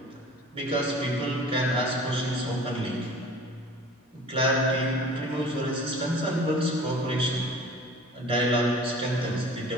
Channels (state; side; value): normal; both; correlation 0.44